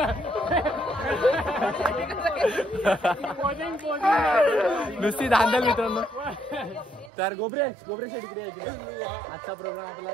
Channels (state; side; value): drops out; left; at 7.1 s